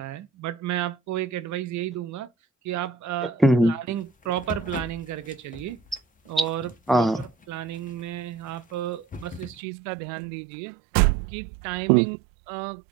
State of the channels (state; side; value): drops out; left; at 9.6 s